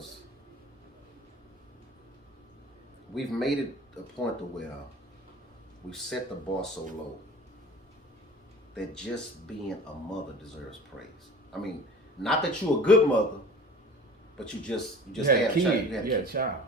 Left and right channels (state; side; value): normal; both; correlation 0.42